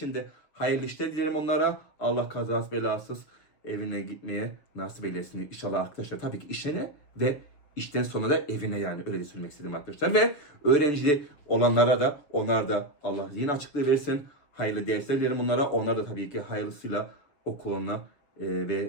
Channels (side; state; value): right; late; 6.9 ms